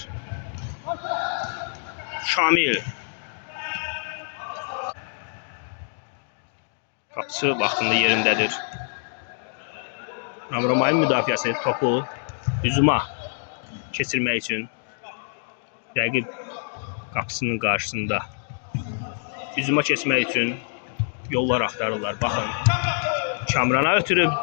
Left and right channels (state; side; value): silent; right; digital silence